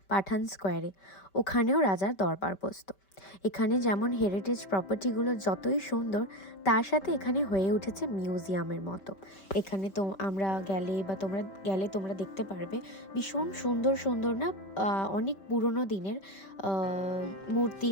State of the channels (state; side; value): late; right; 5.2 ms